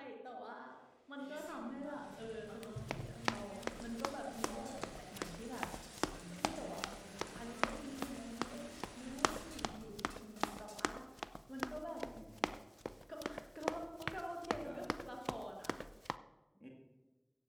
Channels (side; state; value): both; identical; correlation 1.00